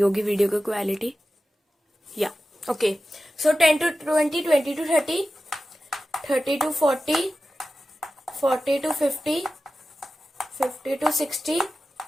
वीडियो की क्वालिटी, या okay. So 10 to 20, 20 to 30, 30 to 40, 40 to 50, 50 to 60,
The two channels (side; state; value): both; normal; correlation 0.93